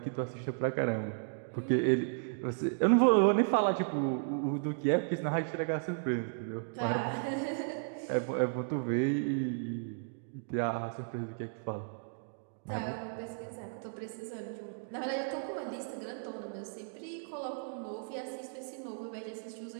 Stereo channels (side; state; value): left; silent; digital silence